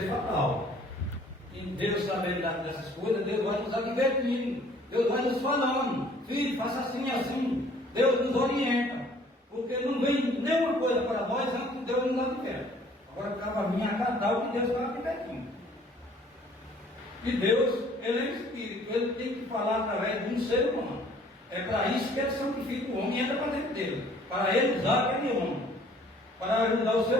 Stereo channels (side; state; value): both; normal; correlation 0.56